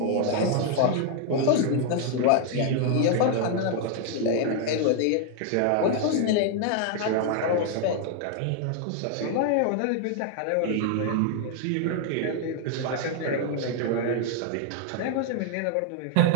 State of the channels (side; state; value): both; different; correlation 0.00